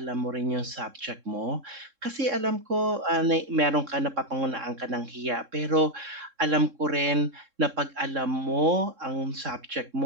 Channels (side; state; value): left; late; 3.7 ms